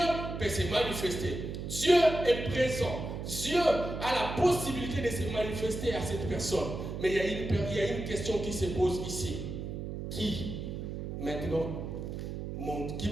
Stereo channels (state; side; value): noise; right; hum, 6 dB below the sound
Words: peut se manifester. Dieu est présent. Dieu a la possibilité de se manifester à cette personne. Mais il y a une question qui se pose ici. Qui, maintenant, qui